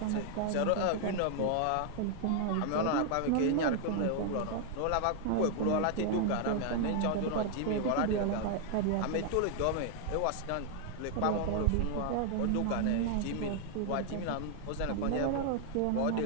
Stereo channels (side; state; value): both; different; correlation 0.00